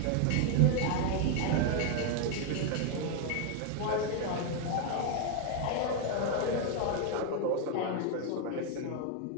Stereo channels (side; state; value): both; different; correlation 0.00